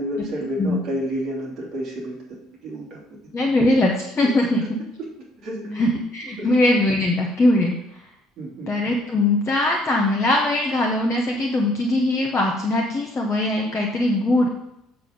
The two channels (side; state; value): both; normal; correlation 0.66